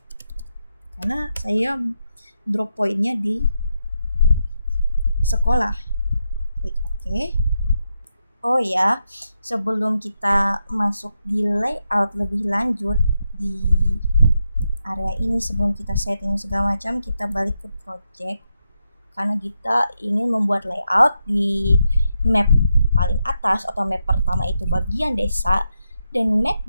Karena saya drop pointnya di sekolah. Klik OK. Oh ya, sebelum kita masuk di layout lebih lanjut di area ini, sebelum kita setting segala macam, kita balik ke project. Karena kita ingin membuat layout di map paling atas atau map pertama itu bagian desa, dan map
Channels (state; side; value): inverted; both; correlation -0.85